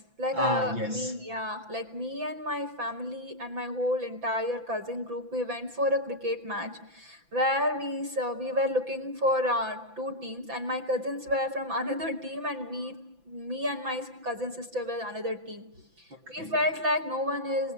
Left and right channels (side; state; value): left; late; 5.9 ms